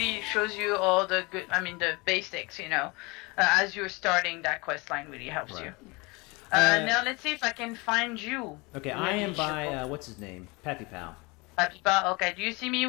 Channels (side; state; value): right; quieter; 26.3 dB